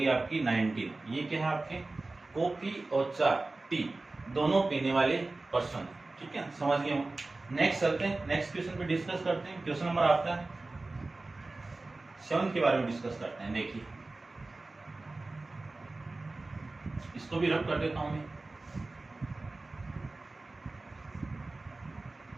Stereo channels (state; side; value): quieter; left; 3.2 dB